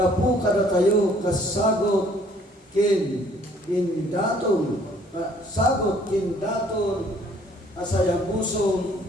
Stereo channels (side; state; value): both; normal; correlation 0.60